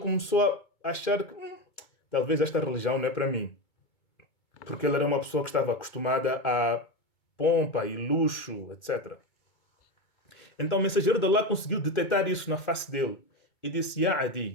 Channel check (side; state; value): right; late; 2.3 ms